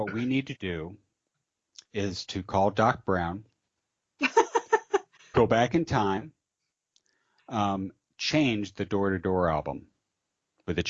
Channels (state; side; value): identical; both; correlation 1.00